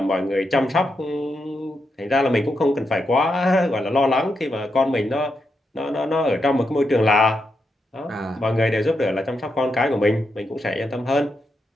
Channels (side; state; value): both; normal; correlation 0.84